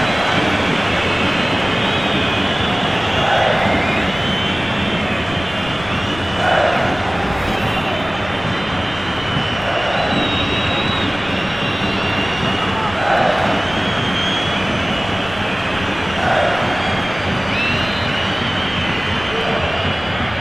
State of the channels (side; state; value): left; noise; rumble, 15 dB below the sound